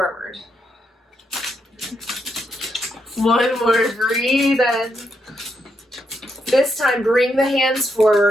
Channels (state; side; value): normal; both; correlation 0.80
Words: One more, breathe in. This time, bring the hands